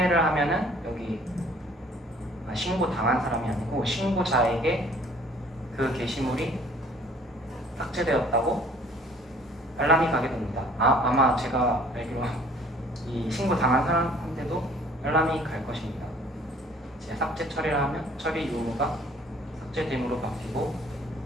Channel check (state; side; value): normal; both; correlation 0.55